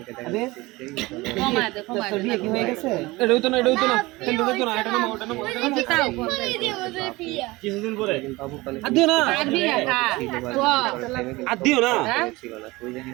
বিয়ে কি হয়ে গেছে এটা হইতো না এটা হইতো না এটা না ওটা না কিছুদিন পরে বাবু পানি আর দিও না আর দিও না ছিল না, কই জানি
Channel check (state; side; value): quieter; left; 21.3 dB